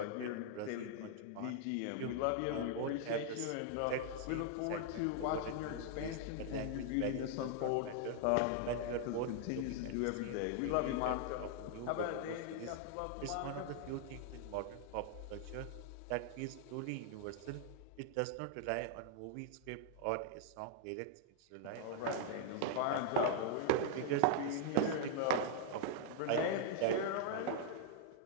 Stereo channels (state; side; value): different; both; correlation -0.01